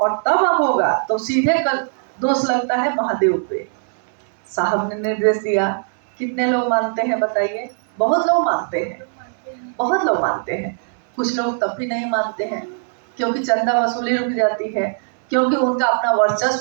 तब होगा तो सीधे दोष लगता है महादेव पे। साहब ने निर्देश दिया। कितने लोग मानते हैं बताइए? बहुत लोग मानते हैं, बहुत लोग मानते हैं। कुछ लोग तब भी नहीं मानते हैं क्योंकि चंदा वसूली रुक जाती है, क्योंकि उनका अपना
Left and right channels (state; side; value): silent; left; 66 dB below the other